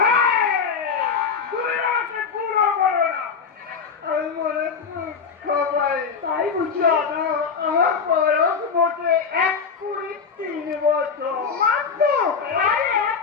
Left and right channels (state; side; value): quieter; right; 5.9 dB